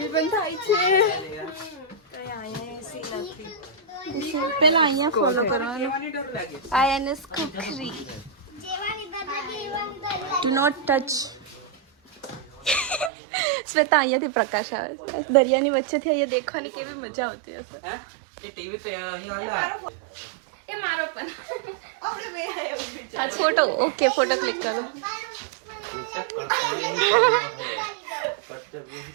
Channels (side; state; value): left; drops out; at 13.1 s